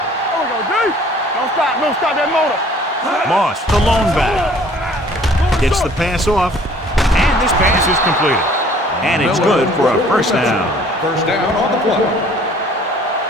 There we go, D. Don't stop that motor. Moss, the lone back. Gets the pass off, and this pass is completed. And it's good for a first down. First down on the play.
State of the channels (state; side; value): normal; both; correlation 0.54